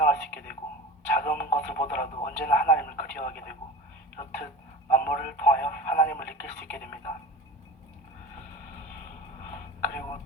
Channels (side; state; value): both; normal; correlation 0.34